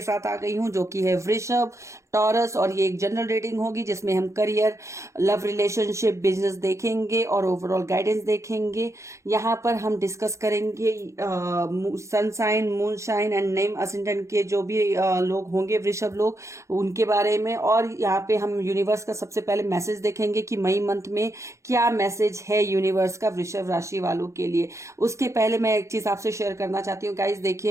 साथ आ गई हूं जो कि है वृषभ, टॉरस। और ये एक जनरल रीडिंग होगी जिसमें हम करियर, लव, रिलेशनशिप, बिजनेस देखेंगे और ओवरऑल गाइडेंस देखेंगे। यहाँ पर हम डिस्कस करेंगे sun sign, moon sign and name ascendant के जो भी लोग होंगे, वृषभ लोग, उनके बारे में। और यहाँ पे हम यूनिवर्स का सबसे पहले मैसेज देखेंगे कि मई मंथ में क्या मैसेज है यूनिवर्स का वृषभ राशि वालों के लिए। उसके पहले मैं एक चीज आपसे शेयर करना चाहती हूँ गाइज।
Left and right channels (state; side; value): late; left; 0.14 ms